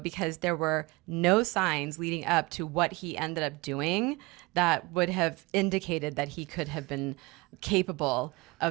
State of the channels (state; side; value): quieter; left; 24.4 dB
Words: there were no signs leading up to what he ended up doing that would have indicated that he could have been capable